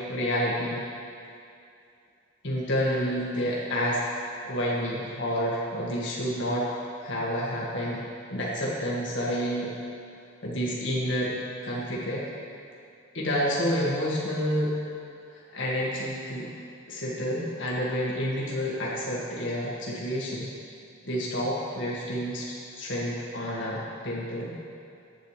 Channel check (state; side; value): normal; both; correlation 0.31